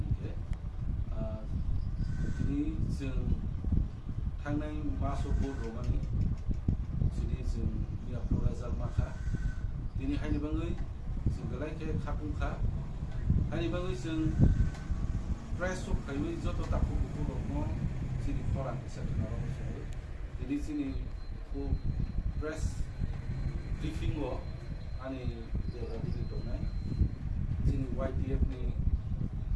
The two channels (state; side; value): identical; both; correlation 1.00